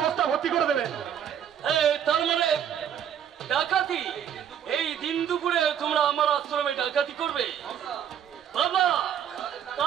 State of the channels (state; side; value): quieter; left; 9.1 dB